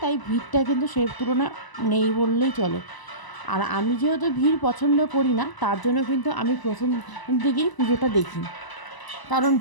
তাই ভিড়টা কিন্তু সেই তুলনায় নেই বললেই চলে। আর আমি যেহেতু ভিড় পছন্দ করি না, তার জন্য কিন্তু আমি প্রথম দিকেই পুজোটা দেখি, কারণ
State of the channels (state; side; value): late; right; 1.0 ms